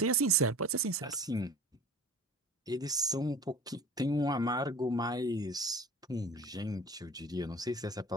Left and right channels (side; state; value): both; normal; correlation 0.42